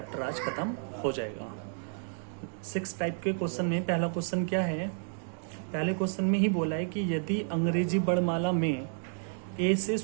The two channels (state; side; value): silent; left; digital silence